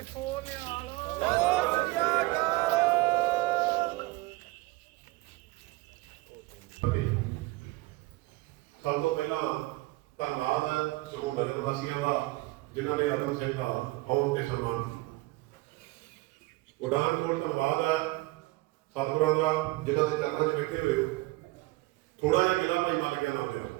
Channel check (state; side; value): quieter; left; 21.1 dB